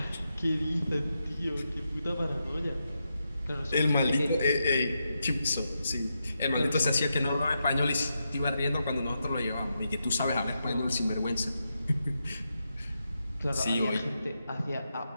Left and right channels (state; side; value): inverted; both; correlation -0.86